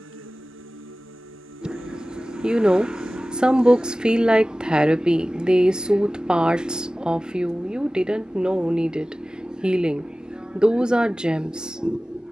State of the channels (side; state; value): both; normal; correlation 0.97